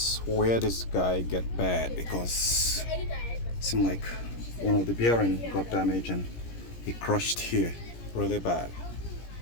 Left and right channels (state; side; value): late; right; 17 ms